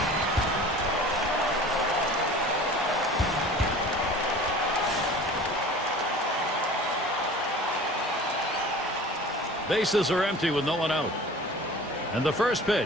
Bases are empty with no one out. And the first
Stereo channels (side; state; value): both; normal; correlation 0.42